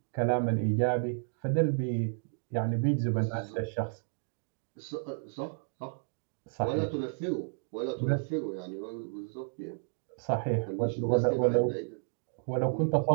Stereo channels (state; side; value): silent; left; digital silence